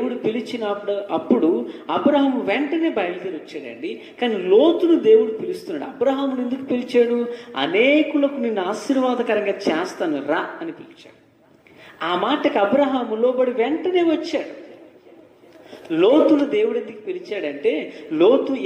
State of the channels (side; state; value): both; identical; correlation 1.00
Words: అప్పుడు అబ్రహాము వెంటనే బయలుదేరి వచ్చాడండి. కానీ లోతును దేవుడు పిలుస్తున్నాడు. అబ్రహామును ఎందుకు పిలిచాడు? అనేకులకు నిన్ను ఆశీర్వాదకరంగా చేస్తాను రా అని పిలిచాడు. ఆ మాటకు అబ్రహాము లోబడి వెంటనే వచ్చాడు. లోతును దేవుడు ఎందుకు పిలిచాడంటే, లోతు